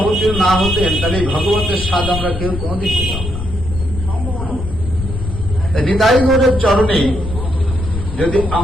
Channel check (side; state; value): left; noise; rumble, 7 dB below the sound